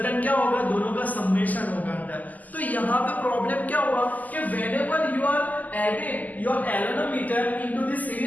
क्या होगा, दोनों का समेशन होगा अंदर. तो यहाँ पे प्रॉब्लम क्या हुआ कि whenever you are adding your galvanometer into the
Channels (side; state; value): right; late; 0.080 ms